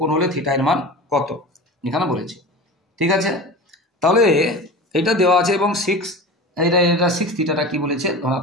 কোণ হলে থিটা এর মান কত এখানে বলেছে। ঠিক আছে, তাহলে এটা দেওয়া আছে এবং 6 এটা 6 থিটাটা কি বলেছে,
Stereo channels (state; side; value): normal; both; correlation 0.32